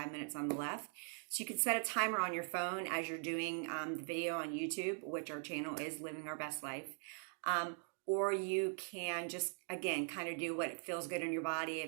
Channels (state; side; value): silent; left; 50 dB below the other